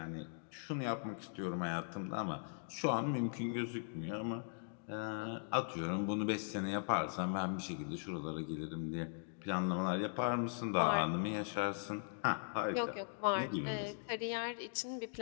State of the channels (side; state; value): right; silent; digital silence